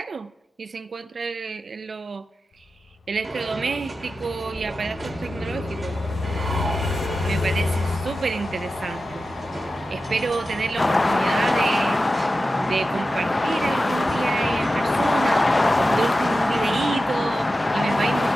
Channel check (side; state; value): both; normal; correlation 0.92